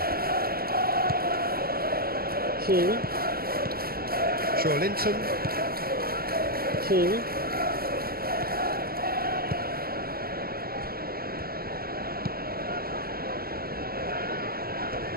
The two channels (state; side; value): late; left; 0.44 ms